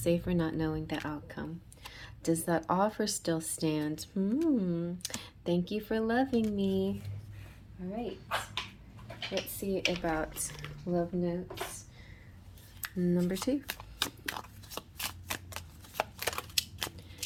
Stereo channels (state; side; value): identical; both; correlation 1.00